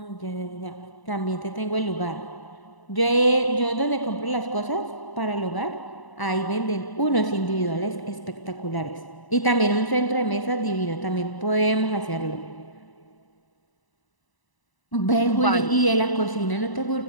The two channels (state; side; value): late; right; 1.0 ms